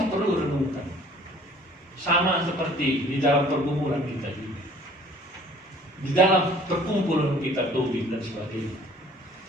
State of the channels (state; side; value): normal; both; correlation 0.53